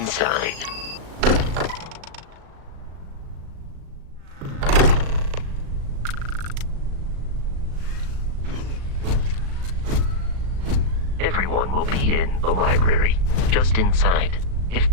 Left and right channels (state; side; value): late; left; 36 ms